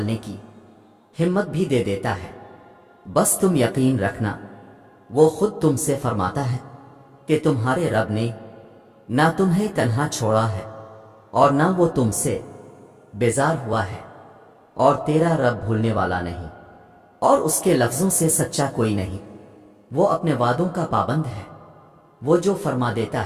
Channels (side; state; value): both; identical; correlation 1.00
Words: کی ہمت بھی دے دیتا ہے۔ بس تم یقین رکھنا، وہ خود تم سے فرماتا ہے کہ تمہارے رب نے نہ تمہیں تنہا چھوڑا ہے اور نہ وہ تم سے بیزار ہوا ہے، اور تیرا رب بھولنے والا نہیں، اور اس کے لفظوں سے سچا کوئی نہیں۔ وہ اپنے وعدوں کا پابند ہے، وہ جو فرما دیتا